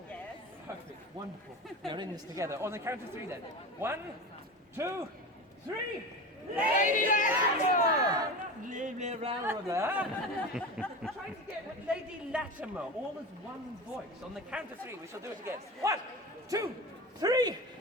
Yes. Perfect, wonderful. We are in this together. On the count of 3 then. 1, 2, 3. Lady Latimer! Trying to get Lady Latimer, all as one voice. On the count of 3, we shall do it again. 1, 2, 3.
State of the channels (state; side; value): normal; both; correlation 0.28